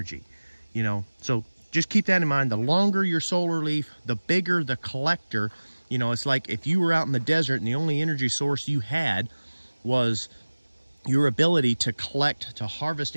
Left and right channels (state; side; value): inverted; both; correlation -1.00